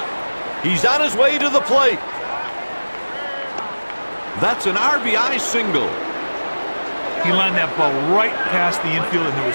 He's on his way to the plate. That's an RBI single. He lined that ball right past the infield, and there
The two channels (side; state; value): both; inverted; correlation -1.00